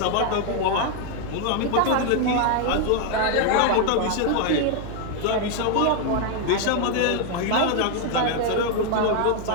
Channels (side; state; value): both; different; correlation 0.00